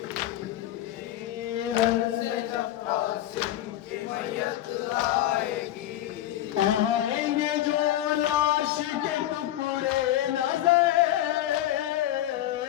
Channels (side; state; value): right; quieter; 13.4 dB